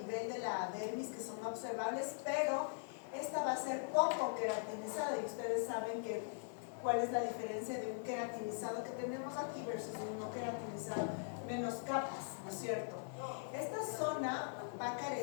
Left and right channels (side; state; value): right; silent; digital silence